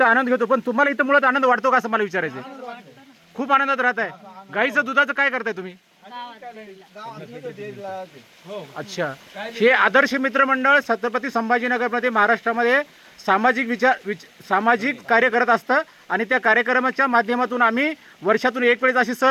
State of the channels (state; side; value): identical; both; correlation 1.00